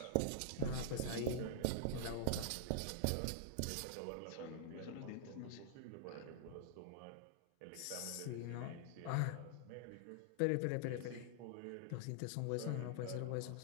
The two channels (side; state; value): both; different; correlation -0.01